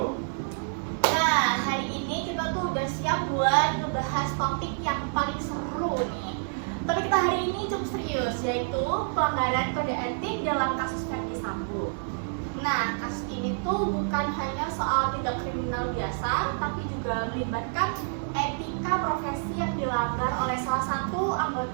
Nah, hari ini kita tuh udah siap buat ngebahas topik yang paling seru nih. Topik kita hari ini cukup serius, yaitu pelanggaran kode etik dalam kasus Verdi Sambo. Nah, kasus ini tuh bukan hanya soal tindak kriminal biasa, tapi juga melibatkan etika profesi yang dilanggar oleh salah satu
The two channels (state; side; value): silent; left; 57 dB below the other